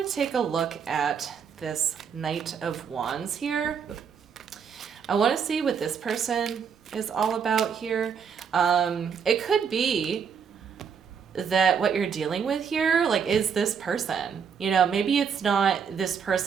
to take a look at this Knight of Wands here. I want to see what this person is all about here. It could be that what you're dealing with here, like, is this person. Maybe it's not this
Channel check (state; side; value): quieter; left; 6.8 dB